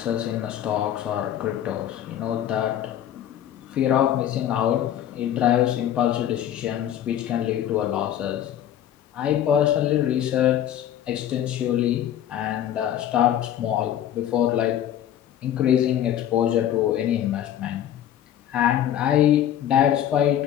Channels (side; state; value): right; quieter; 11.0 dB